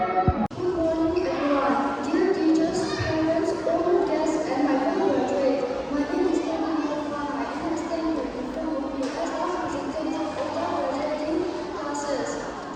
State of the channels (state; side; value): identical; both; correlation 1.00